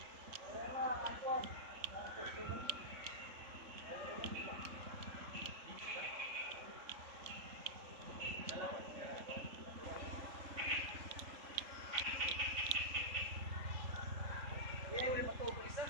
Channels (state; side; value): late; left; 3.5 ms